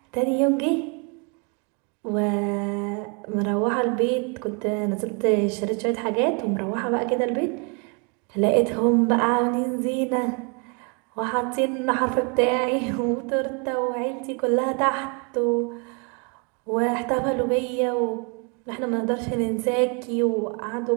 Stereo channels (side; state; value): left; quieter; 35.4 dB